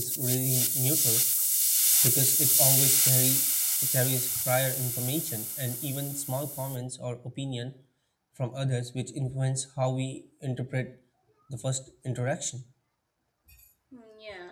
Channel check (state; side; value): identical; both; correlation 1.00